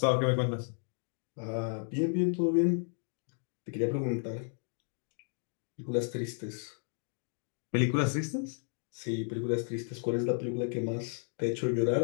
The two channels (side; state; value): right; silent; 56 dB below the other